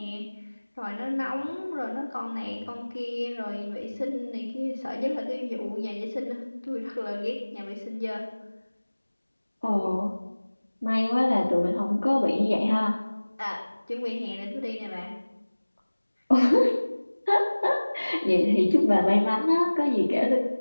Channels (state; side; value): inverted; both; correlation -1.00